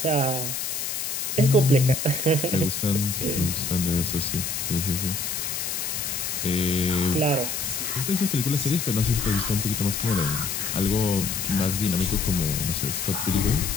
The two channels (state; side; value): noise; left; hiss, 3 dB below the sound